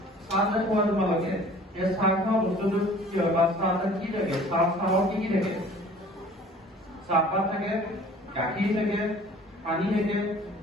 চাহ যে খোৱা তোমালোকে, এই চাহ খোৱা বস্তুটো কি হয়? বা চাহ কি থাকে? চাহত কি কি থাকে? চাহপাত থাকে, গাখীৰ থাকে, পানী থাকে,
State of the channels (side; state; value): both; normal; correlation 0.49